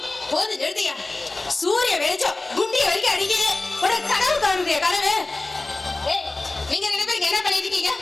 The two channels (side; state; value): right; quieter; 3.1 dB